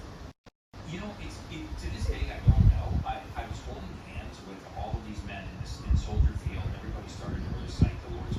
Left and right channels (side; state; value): both; identical; correlation 1.00